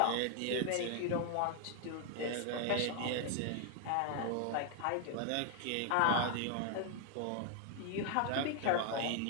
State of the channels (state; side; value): different; both; correlation 0.00